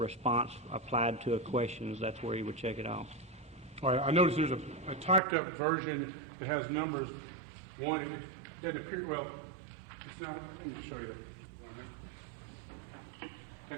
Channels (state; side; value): drops out; left; at 5.2 s